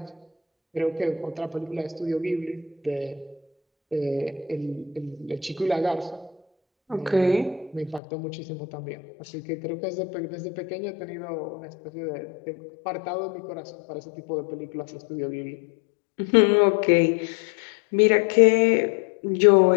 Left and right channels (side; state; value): right; drops out; at 8.0 s